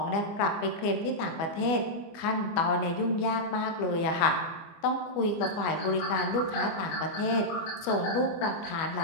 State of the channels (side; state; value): right; late; 25 ms